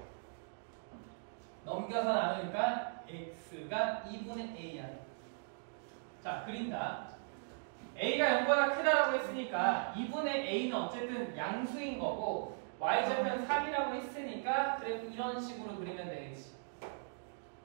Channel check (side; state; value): left; silent; digital silence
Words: 넘겨서 나누니까 x가 2분의 a야. 자, 그린다. a가 0보다 크다라고 했으니까 2분의 a는 어쨌든 양수인 거고 y절편 3이라고 했으니까 그래도 이런 식으로 그리면 되겠지.